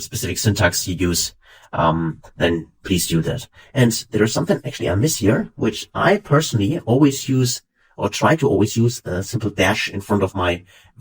syntax you use, then please do that. And there is something actually I miss here, which I personally always use or try to always use a simple dash in front of my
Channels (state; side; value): identical; both; correlation 1.00